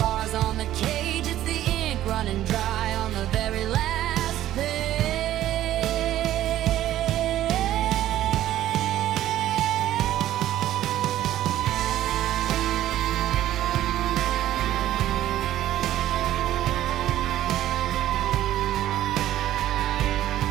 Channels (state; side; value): quieter; left; 13.2 dB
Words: on the cage, it's the ink running dry on the very last page.